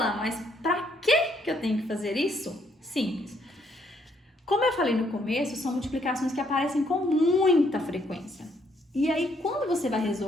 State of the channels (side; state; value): both; normal; correlation 0.70